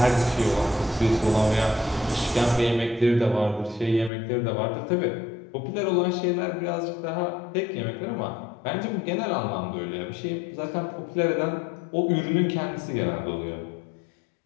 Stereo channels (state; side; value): drops out; right; at 4.1 s